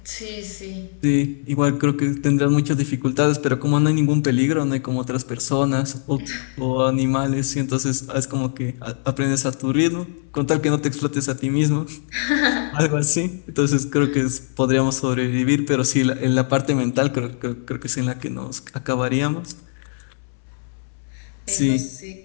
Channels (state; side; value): silent; right; 64 dB below the other